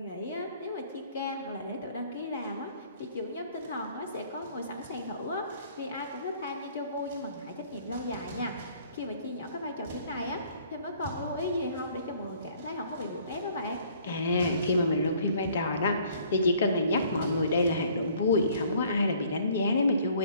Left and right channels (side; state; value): both; inverted; correlation -0.58